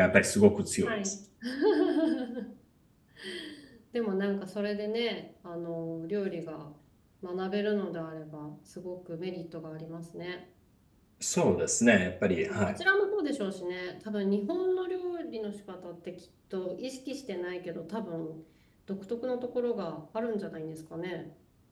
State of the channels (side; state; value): both; identical; correlation 1.00